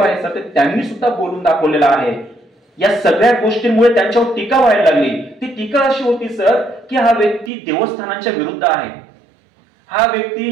आहे सर, त्यांनी सुद्धा बोलून दाखवलेलं आहे। या सगळ्या गोष्टींमुळे त्यांच्यावर टीका व्हायला लागली। ती टीका अशी होती सर की हा व्यक्ती देवस्थानांच्या विरुद्ध आहे, हा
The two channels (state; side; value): drops out; left; at 7.5 s